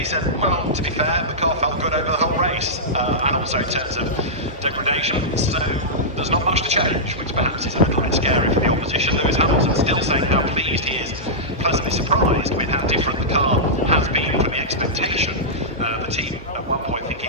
said, well, to be fair, the car felt good over the whole race, and also in terms of degradation, so there's not much to change, which perhaps is a little bit scary for the opposition. Lewis Hamilton still saying how pleased he is, pleasantly surprised with how different the car has been from the expectation. The team at one point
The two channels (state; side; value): normal; both; correlation -0.12